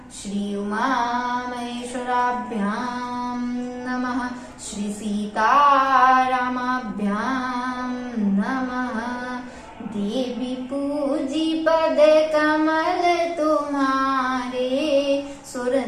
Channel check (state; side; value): identical; both; correlation 1.00